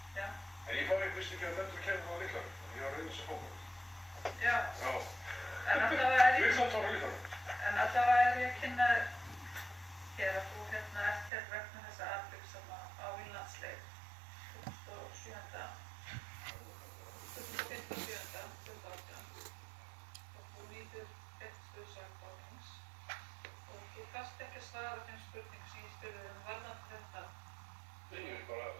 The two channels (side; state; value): left; drops out; at 11.3 s